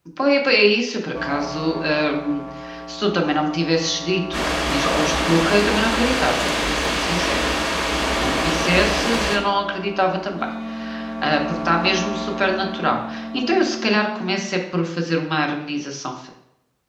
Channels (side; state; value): both; identical; correlation 1.00